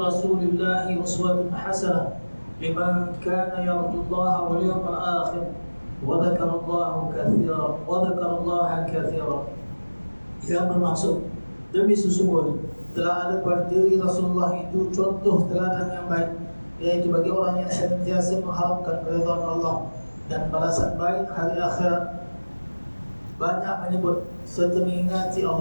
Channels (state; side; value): inverted; both; correlation -1.00